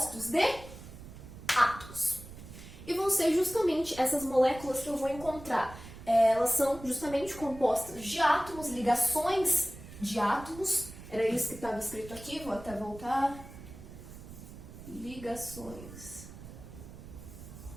de átomos. E vão ser justamente essas moléculas que eu vou encontrar. Elas são justamente compostas de átomos, ligações de átomos. Era isso que estava escrito aqui, vou até voltar. Ligações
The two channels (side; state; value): right; noise; rumble, 15 dB below the sound